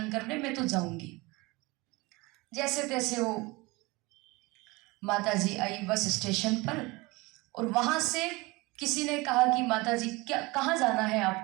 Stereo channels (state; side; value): quieter; left; 23.5 dB